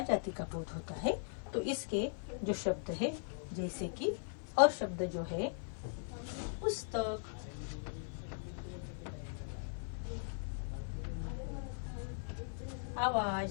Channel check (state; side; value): silent; right; 52 dB below the other